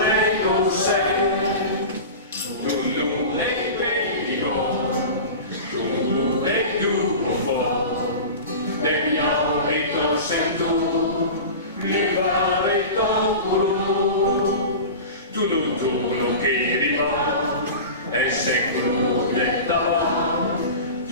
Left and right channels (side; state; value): both; inverted; correlation -0.31